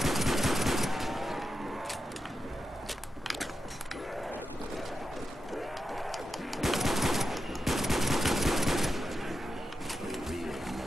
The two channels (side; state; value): both; normal; correlation 0.90